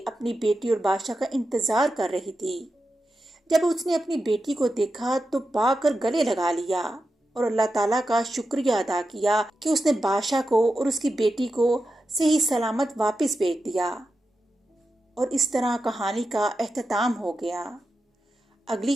اپنی بیٹی اور بادشاہ کا انتظار کر رہی تھی۔ جب اس نے اپنی بیٹی کو دیکھا تو بھاگ کر گلے لگا لیا اور اللہ تعالیٰ کا شکریہ ادا کیا کہ اس نے بادشاہ کو اور اس کی بیٹی کو صحیح سلامت واپس بھیج دیا۔ اور اس طرح کہانی کا اختتام ہو گیا۔ اگلی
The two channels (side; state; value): both; normal; correlation 0.90